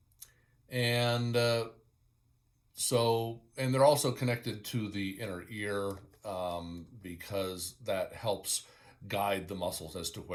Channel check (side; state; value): both; identical; correlation 1.00